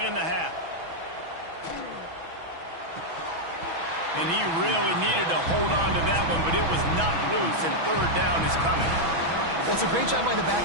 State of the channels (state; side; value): late; left; 6.1 ms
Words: in the half. And he really needed to hold on to that one, but it was not loose, and third down is coming. Well, it's a great job by the